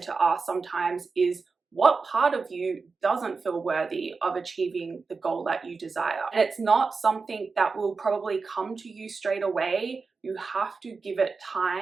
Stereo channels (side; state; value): left; quieter; 4.5 dB